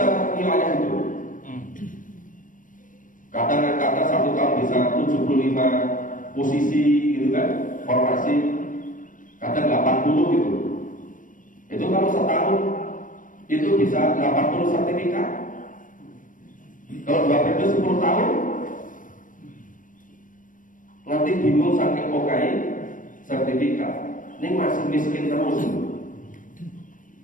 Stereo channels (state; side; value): late; right; 0.38 ms